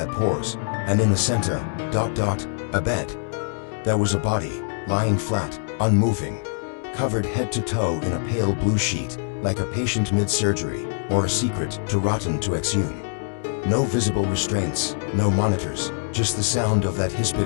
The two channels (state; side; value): silent; right; digital silence